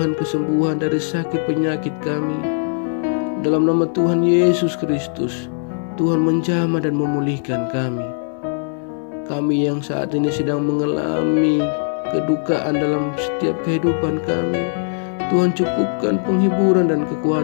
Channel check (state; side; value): silent; right; digital silence